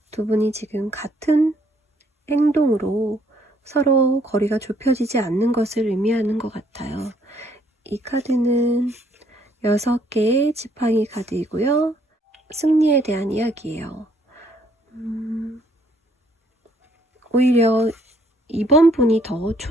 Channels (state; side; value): normal; both; correlation 0.66